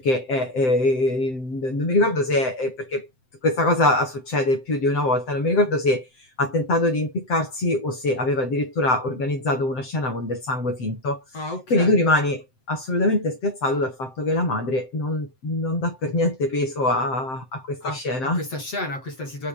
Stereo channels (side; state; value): right; late; 7.7 ms